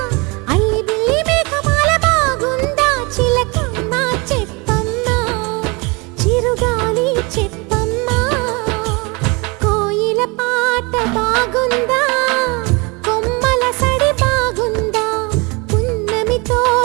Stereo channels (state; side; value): quieter; left; 28.1 dB